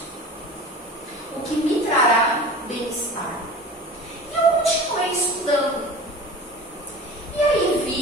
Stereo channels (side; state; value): both; normal; correlation 0.37